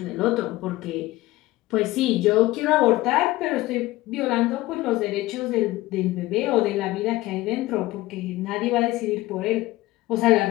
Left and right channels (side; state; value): right; quieter; 18.2 dB